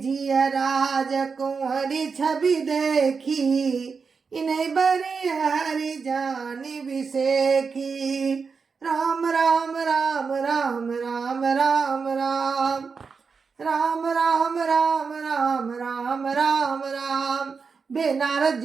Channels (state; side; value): quieter; left; 5.2 dB